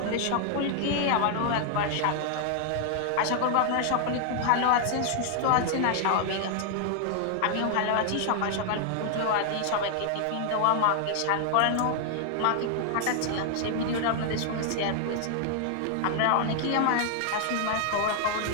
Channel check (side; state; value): both; different; correlation 0.00